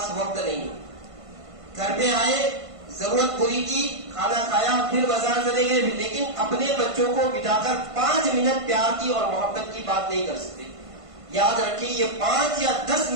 وقت نہیں. گھر پہ آئے، ضرورت پوری کی، کھانا کھایا، پھر بازار چلے گئے، لیکن اپنے بچوں کو بٹھا کر 5 منٹ پیار کی اور محبت کی بات نہیں کر سکتے. یاد رکھیں یہ 5 یا 10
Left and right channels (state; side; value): late; left; 1.5 ms